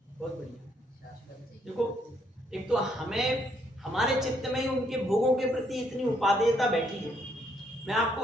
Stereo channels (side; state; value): both; normal; correlation 0.71